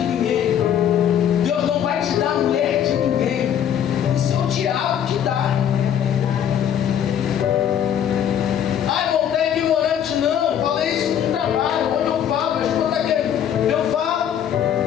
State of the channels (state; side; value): quieter; right; 9.5 dB